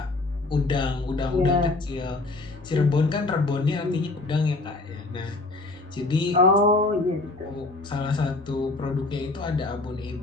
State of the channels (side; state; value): right; quieter; 3.2 dB